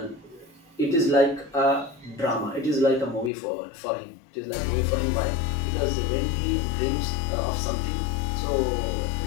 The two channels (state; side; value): drops out; right; at 3.3 s